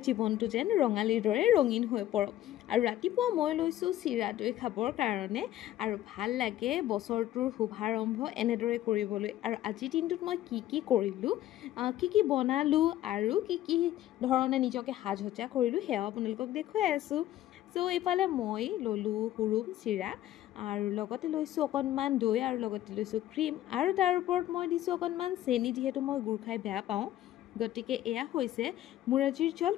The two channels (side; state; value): right; quieter; 13.5 dB